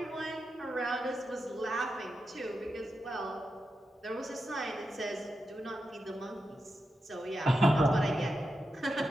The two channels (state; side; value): normal; both; correlation 0.88